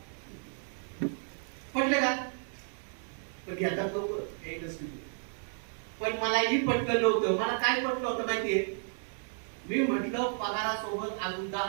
पटले का? पण घेतात लोक. पण मलाही पटलं नव्हतं. मला काय पटलं होतं माहितीये? मी म्हटलं पगारासोबत अजून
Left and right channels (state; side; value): silent; left; 56 dB below the other